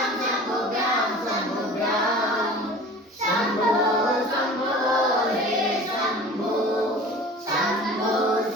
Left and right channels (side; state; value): both; normal; correlation 0.41